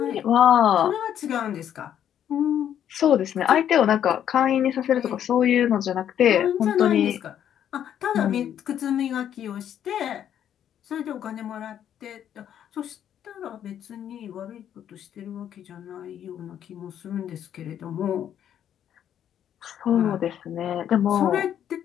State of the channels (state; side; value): quieter; right; 9.9 dB